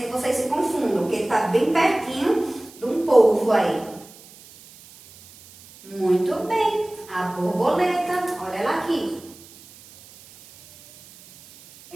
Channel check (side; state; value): right; noise; hiss, 22 dB below the sound